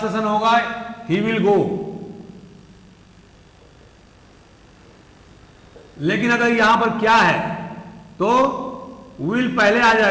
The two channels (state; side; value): identical; both; correlation 1.00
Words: होगा ही विल गो। लेकिन अगर यहां पर क्या है तो विल पहले आ